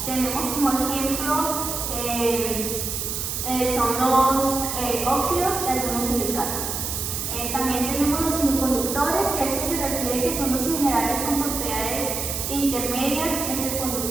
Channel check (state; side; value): noise; right; hiss, 3 dB below the sound